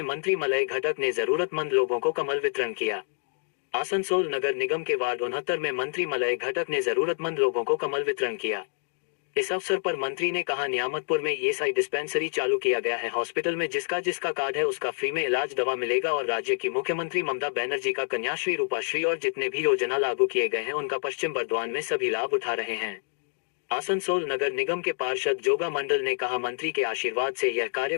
मंत्री मलय घटक ने जरूरतमंद लोगों को कमल वितरण किया। आसनसोल नगर निगम के वार्ड 69 में मंत्री मलय घटक ने जरूरतमंद लोगों को कमल वितरण किया। इस अवसर पर मंत्री ने कहा, नियामतपुर में ईएसआई डिस्पेंसरी चालू किया गया है। हॉस्पिटल में जिसका कार्ड है उसका फ्री में इलाज दवा मिलेगा और राज्य की मुख्यमंत्री ममता बनर्जी का कन्याश्री, रूपाश्री और जितने भी योजना लागू किए गए हैं उनका पश्चिम बर्दवान में सभी लाभ उठा रहे हैं। आसनसोल नगर निगम के पार्षद जोगा मंडल ने कहा, मंत्री के आशीर्वाद से यह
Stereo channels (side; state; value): right; silent; digital silence